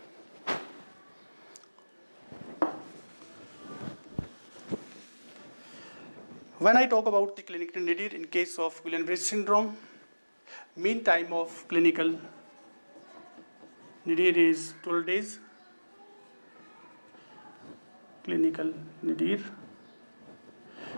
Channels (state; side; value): inverted; both; correlation -1.00